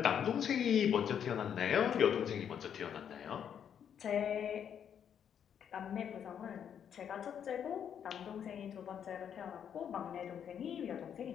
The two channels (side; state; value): right; quieter; 8.5 dB